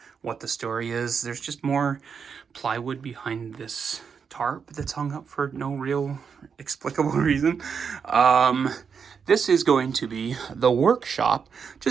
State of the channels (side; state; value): left; quieter; 6.4 dB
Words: what the story is. There's just more plywood behind this tarp that's hung up for no real explicable reason. This is going to be the workshop,